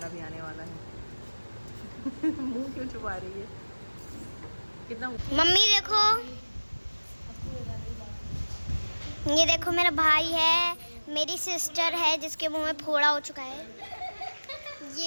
भी आने वाला है। मुंह क्यों छुपा रही है? कितना मम्मी देखो, ये देखो मेरा भाई है, मेरी सिस्टर है जिसके मुंह में फोड़ा हो चुका है।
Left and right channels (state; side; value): inverted; both; correlation -1.00